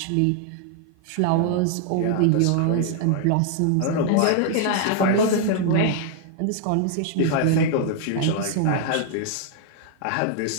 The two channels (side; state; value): both; different; correlation 0.00